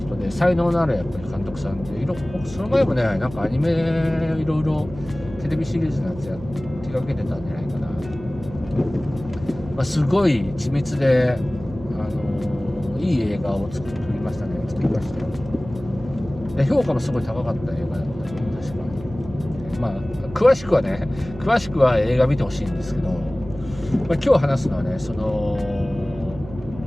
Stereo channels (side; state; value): right; noise; hum, 15 dB below the sound